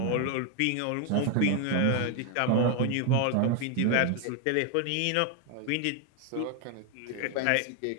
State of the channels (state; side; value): different; both; correlation 0.01